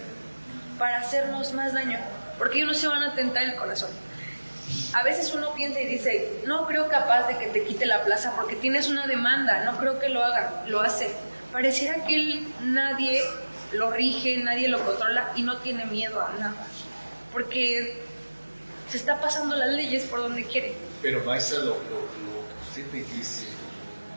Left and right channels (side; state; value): both; inverted; correlation -1.00